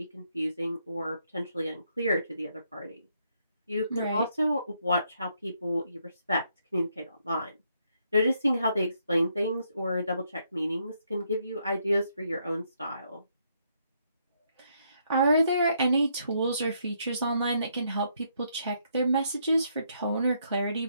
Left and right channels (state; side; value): inverted; both; correlation -0.74